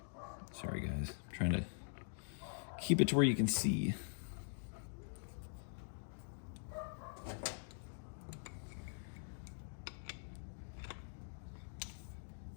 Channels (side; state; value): right; silent; digital silence